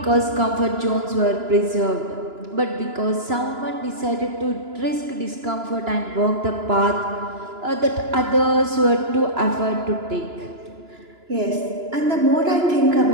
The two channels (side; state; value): left; late; 2.9 ms